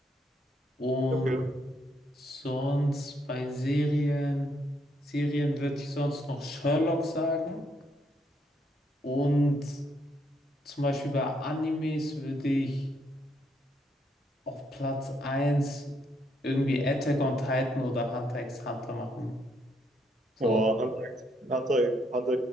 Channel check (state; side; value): normal; both; correlation 0.74